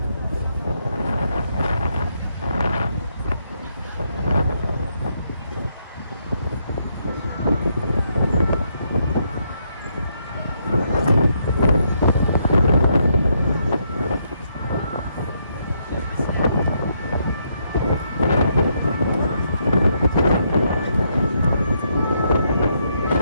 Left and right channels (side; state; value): both; inverted; correlation -0.76